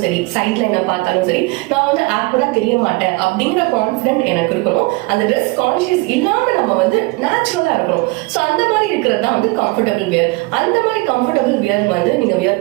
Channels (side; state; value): left; quieter; 24.3 dB